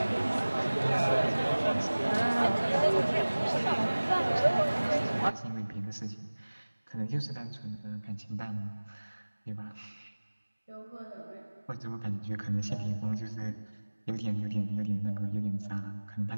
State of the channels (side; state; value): both; inverted; correlation -1.00